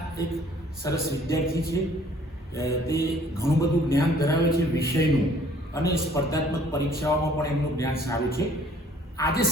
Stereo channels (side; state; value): both; normal; correlation 0.57